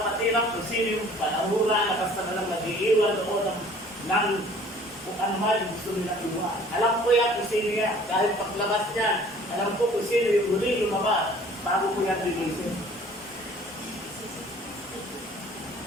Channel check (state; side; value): normal; both; correlation 0.52